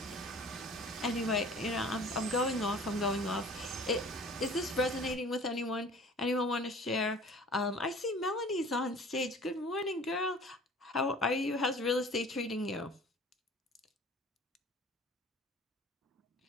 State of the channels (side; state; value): both; normal; correlation 0.46